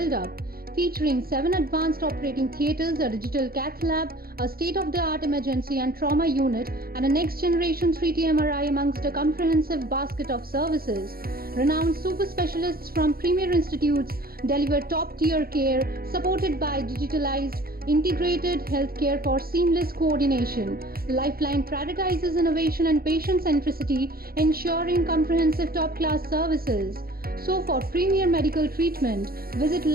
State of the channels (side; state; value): left; late; 0.44 ms